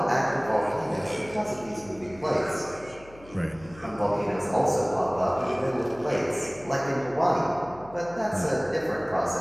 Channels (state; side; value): noise; left; hum, 22 dB below the sound